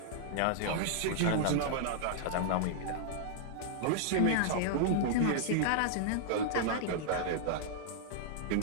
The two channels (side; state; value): both; different; correlation -0.01